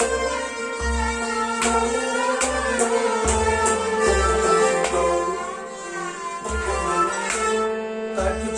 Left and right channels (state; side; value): identical; both; correlation 1.00